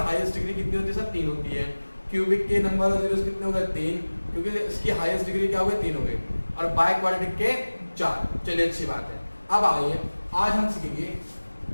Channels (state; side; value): inverted; both; correlation -1.00